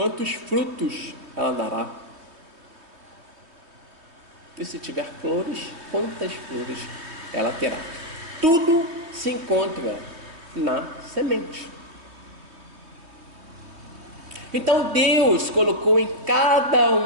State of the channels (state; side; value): late; left; 3.1 ms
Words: frutos ela dará? E se tiver flores, quantas flores ela terá? Tudo se encontra na semente. Então Deus colocou em cada